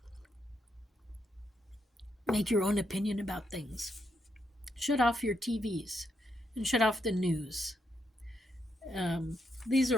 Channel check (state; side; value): normal; both; correlation 0.79